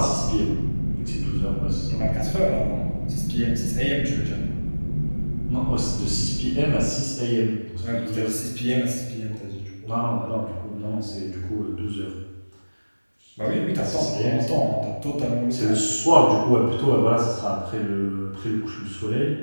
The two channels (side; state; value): both; inverted; correlation -1.00